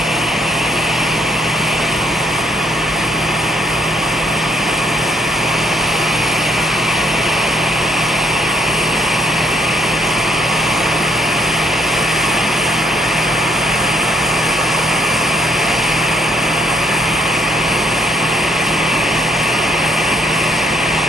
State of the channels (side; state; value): both; normal; correlation 0.64